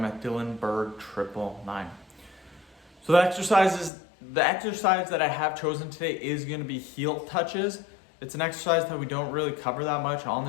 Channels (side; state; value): right; drops out; at 3.9 s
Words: at DylanBerg999. So the exercise that I have chosen today is going to be heel touches. It's an exercise that we don't really cover that much on